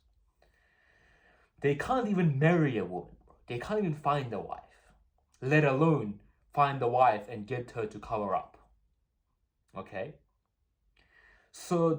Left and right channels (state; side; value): identical; both; correlation 1.00